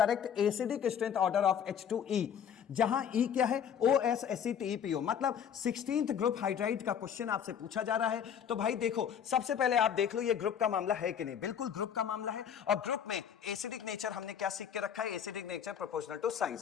acidic strength order of H2E, जहां E क्या है? OSACTEPO, मतलब 16th ग्रुप हाइड्राइड का क्वेश्चन आपसे पूछा जा रहा है। तो भाई देखो, सबसे पहले आप देख लो ये ग्रुप का मामला है कि नहीं। बिल्कुल ग्रुप का मामला है, और ग्रुप में एसिडिक नेचर हमने क्या सीख के रखा है? Acidic nature proportional to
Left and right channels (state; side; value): quieter; right; 8.4 dB